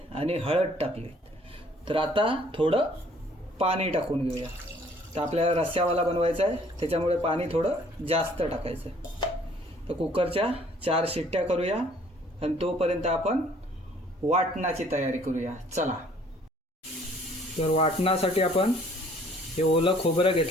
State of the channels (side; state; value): both; normal; correlation 0.58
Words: आणि हळद टाकली। तर आता थोडं पाणी टाकून घेऊया। तर आपल्याला रस्स्यावाला बनवायचा आहे, त्याच्यामुळे पाणी थोडं जास्त टाकायचं आहे। तर कुकरच्या 4 शिट्ट्या करूया आणि तोपर्यंत आपण वाटणाची तयारी करूया। चला। तर वाटणासाठी आपण हे ओलं खोबरं